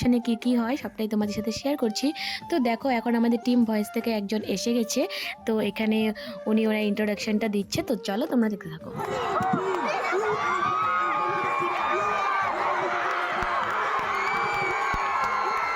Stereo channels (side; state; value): both; identical; correlation 1.00